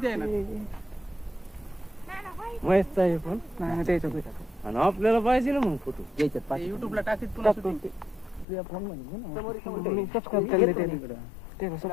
आहे ना. मस्त आहे पण नाही त्याच्यात. आणि आपल्याला पाहिजे ना मग फोटो याच्यात युट्यूबला टाकीत पुन्हा तुझ्या फोन मध्ये मी सबस्क्राइब केले ते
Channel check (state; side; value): drops out; right; at 8.5 s